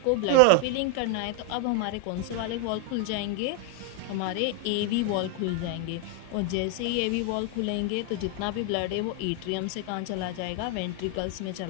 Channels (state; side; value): different; both; correlation 0.01